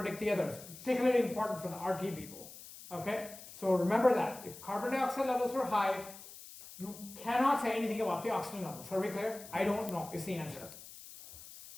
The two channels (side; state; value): left; noise; hiss, 16 dB below the sound